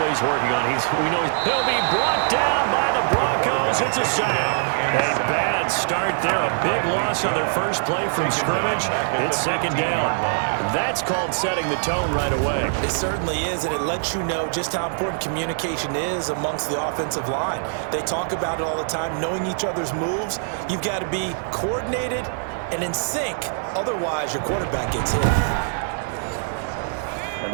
working on, we know he'll be brought down by the Broncos. It's a sack. A bad start there, a big loss on their first play from scrimmage. It's second down. That's called setting the tone right away. It certainly is, and it lets you know just how important communication is amongst the offensive line. They talk about it all the time, knowing each other's moves. You've got to be coordinated and in sync. Otherwise, your quarterback gets hit. And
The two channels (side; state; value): left; silent; digital silence